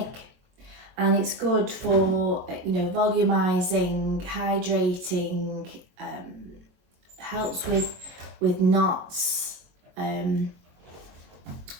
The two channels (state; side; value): late; left; 22 ms